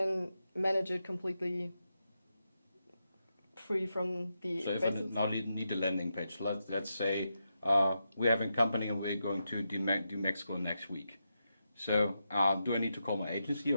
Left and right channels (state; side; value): inverted; both; correlation -0.86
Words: manage it completely free from the So if I expenses. now need a landing page, let's say we're having a company and we're going to do Mexico next week. So do I need to call my agency